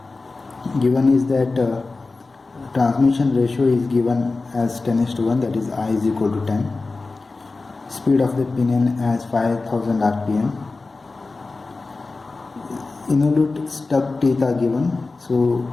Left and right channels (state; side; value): quieter; right; 3.7 dB